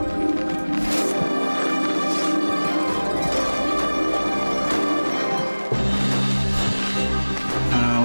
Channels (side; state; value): both; inverted; correlation -1.00